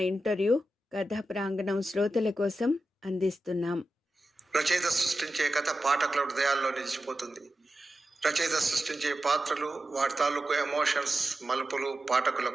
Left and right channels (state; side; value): normal; both; correlation 0.92